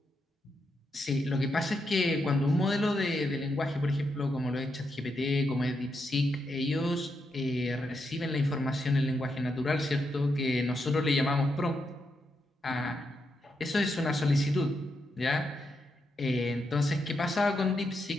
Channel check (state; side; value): normal; both; correlation 0.83